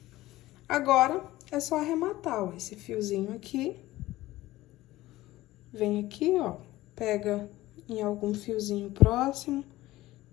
Agora, é só arrematar, ó, esse fiozinho aqui. Vem aqui, ó, pega em algum fiozinho próximo,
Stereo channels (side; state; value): right; quieter; 17.0 dB